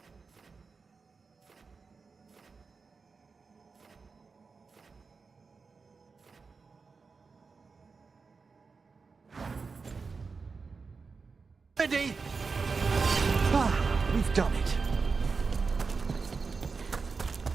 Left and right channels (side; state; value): left; quieter; 4.7 dB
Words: Ready? Ah, we've done it.